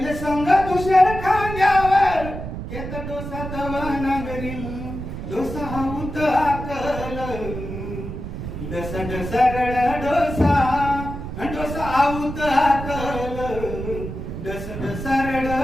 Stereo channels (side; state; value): right; noise; rumble, 7 dB below the sound